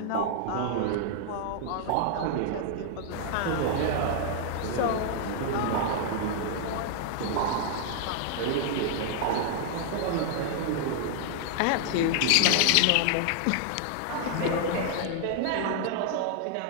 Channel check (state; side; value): different; both; correlation -0.01